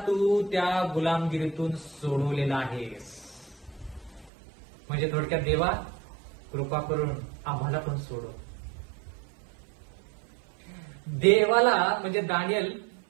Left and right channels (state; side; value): drops out; left; at 4.3 s